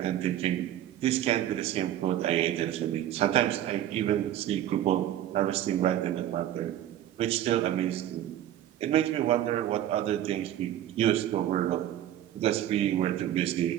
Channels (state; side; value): quieter; left; 12.0 dB